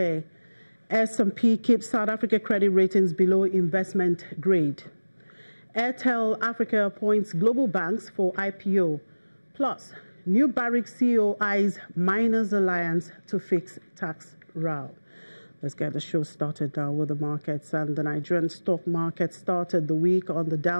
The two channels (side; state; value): both; inverted; correlation -1.00